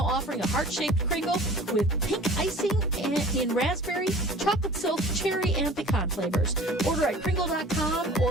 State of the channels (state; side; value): normal; both; correlation 0.44